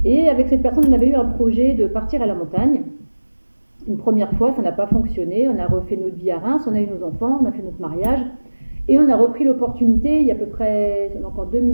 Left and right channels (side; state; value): both; inverted; correlation -1.00